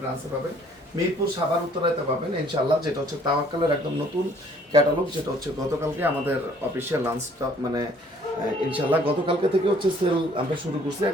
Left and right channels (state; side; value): normal; both; correlation 0.59